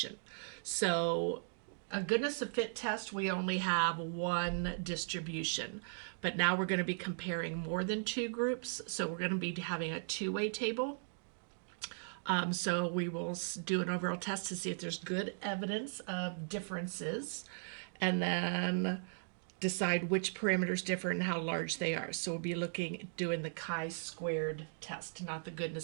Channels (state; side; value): silent; left; digital silence